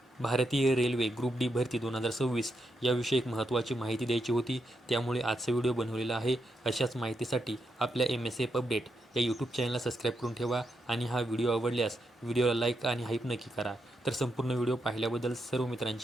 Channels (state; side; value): normal; both; correlation 0.83